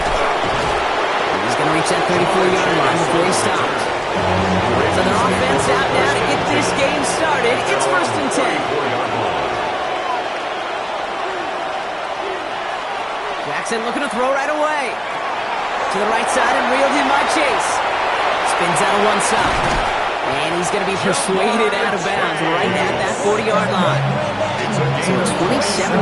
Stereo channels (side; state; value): both; identical; correlation 1.00